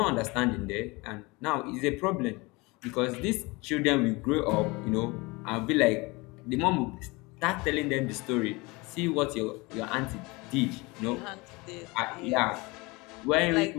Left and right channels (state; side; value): quieter; right; 24.8 dB